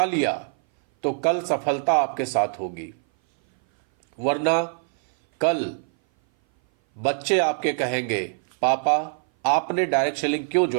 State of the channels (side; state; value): left; silent; 58 dB below the other